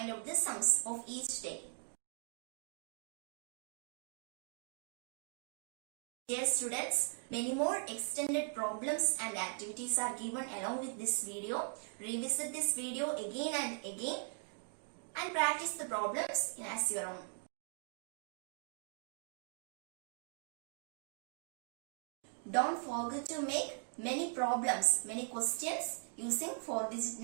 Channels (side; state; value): left; silent; 51 dB below the other